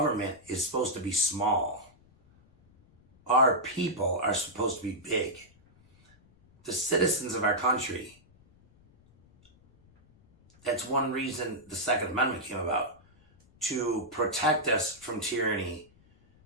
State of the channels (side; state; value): left; noise; rumble, 29 dB below the sound